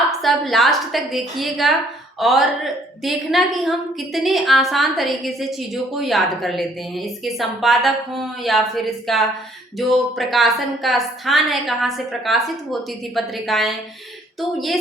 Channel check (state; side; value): normal; both; correlation 0.62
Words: सब लास्ट तक देखिएगा और देखना कि हम कितने आसान तरीके से चीज़ों को याद कर लेते हैं। इसके संपादक हों या फिर इसका जो प्रकाशन का स्थान है, कहाँ से प्रकाशित होती थी पत्रिकाएं, तो ये